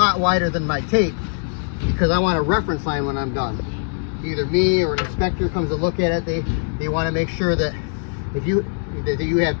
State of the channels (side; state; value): right; silent; 65 dB below the other